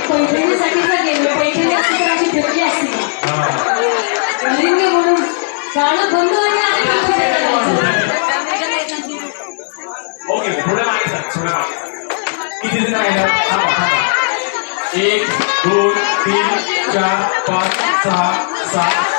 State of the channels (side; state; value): right; silent; digital silence